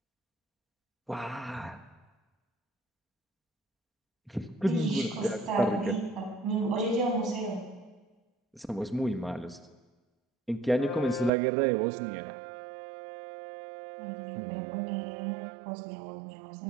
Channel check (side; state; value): left; drops out; at 11.3 s